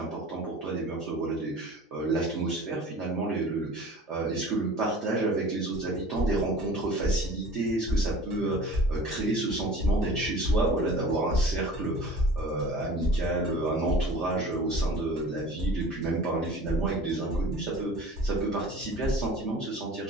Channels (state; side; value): normal; both; correlation 0.42